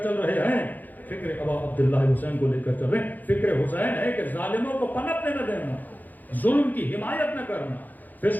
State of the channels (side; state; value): right; late; 0.084 ms